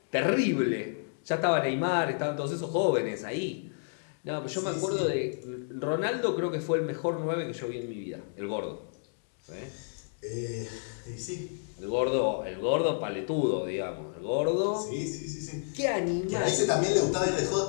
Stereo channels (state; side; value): silent; right; digital silence